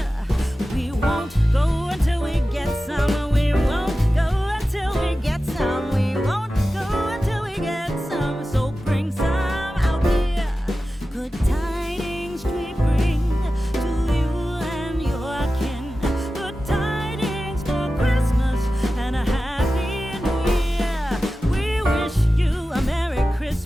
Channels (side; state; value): both; normal; correlation 0.94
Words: We won't go until we get some. We won't go until we get some. We won't go until we get some. So bring some out here. Good tidings we bring to you and your kin. Good tidings for Christmas and a Happy New Year. We wish you a Merry